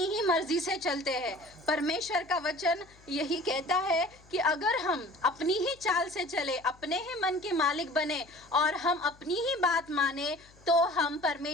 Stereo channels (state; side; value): noise; left; hum, 27 dB below the sound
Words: ही मर्जी से चलते हैं। परमेश्वर का वचन यही कहता है कि अगर हम अपनी ही चाल से चले, अपने ही मन के मालिक बने और हम अपनी ही बात माने, तो हम